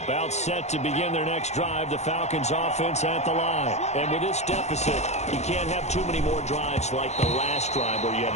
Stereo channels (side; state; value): right; late; 0.33 ms